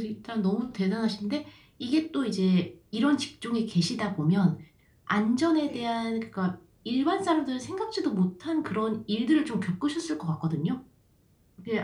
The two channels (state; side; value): identical; both; correlation 1.00